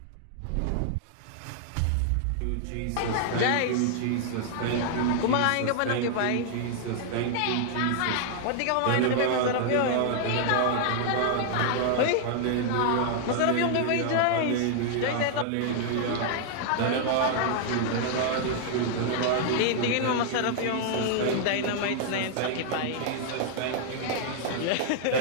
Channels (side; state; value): both; different; correlation -0.01